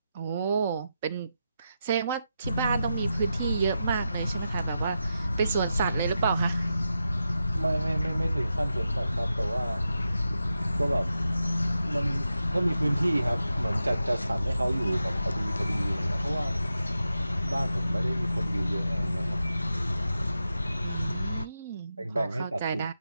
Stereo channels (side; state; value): both; inverted; correlation -0.88